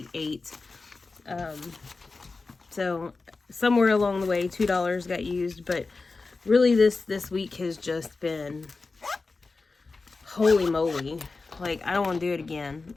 So somewhere along the way, $2 got used, but really this week has just been, holy moly. Like, I don't want to do it again.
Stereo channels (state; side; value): quieter; right; 3.9 dB